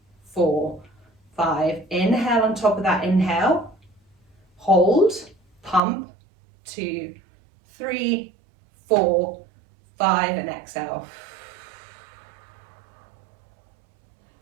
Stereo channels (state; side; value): drops out; left; at 5.8 s